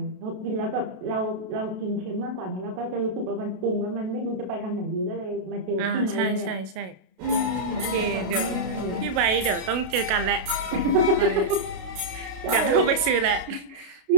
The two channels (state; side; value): late; left; 32 ms